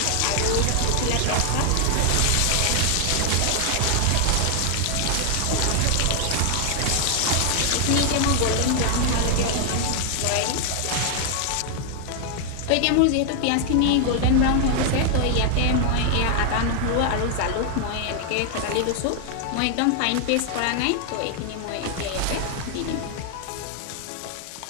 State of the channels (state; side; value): different; both; correlation 0.00